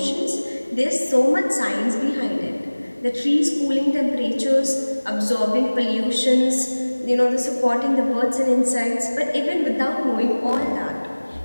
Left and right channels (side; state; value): both; inverted; correlation -1.00